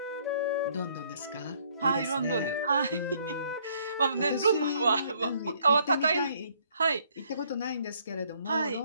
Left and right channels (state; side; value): inverted; both; correlation -0.65